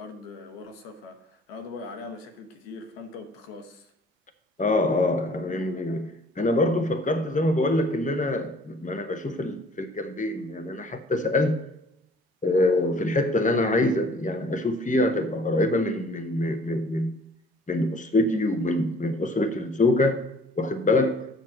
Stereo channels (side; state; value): both; normal; correlation 0.54